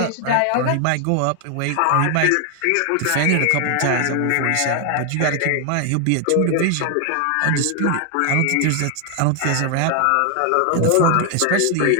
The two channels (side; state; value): both; different; correlation 0.00